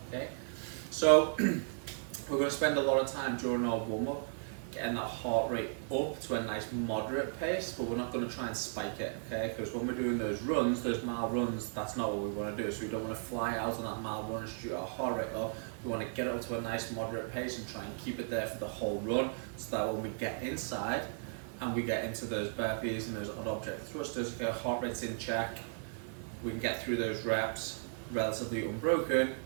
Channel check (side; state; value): left; silent; digital silence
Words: Okay. So we're going to spend a lot of time during our warm-up getting that heart rate up to a nice moderate pace, but we're not going to try and spike it, okay? Because when we're doing those runs, those mile runs, that's not what we want to do. So we don't want to fly out on that mile run and shoot our heart rate up. We want to get it to a nice moderate pace and try and keep it there for the whole run, so that when we get inside and we get into those burpees and those odd object thrusters, okay, our heart rate's in check, we can get through those reps relatively unbroken,